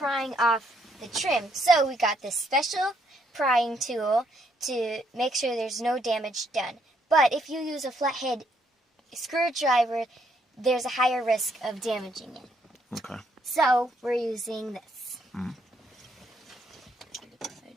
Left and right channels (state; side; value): normal; both; correlation 0.72